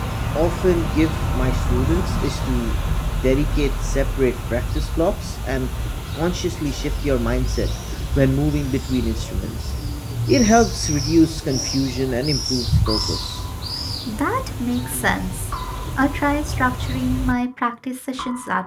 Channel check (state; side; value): identical; both; correlation 1.00